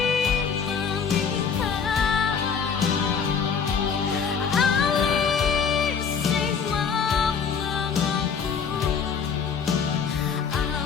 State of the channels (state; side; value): quieter; right; 6.3 dB